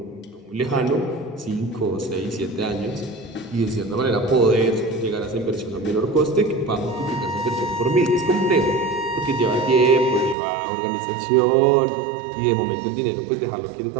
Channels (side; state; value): left; drops out; at 10.4 s